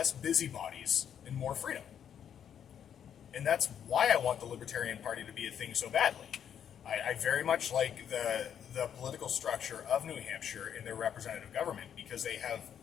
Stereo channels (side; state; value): right; quieter; 8.8 dB